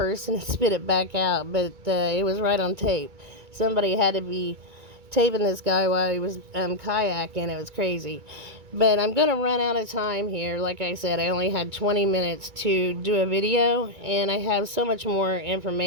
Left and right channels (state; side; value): late; left; 2.3 ms